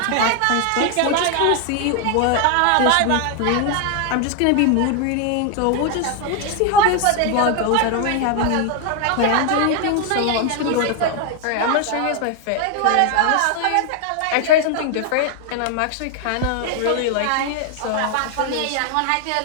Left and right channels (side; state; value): both; different; correlation 0.01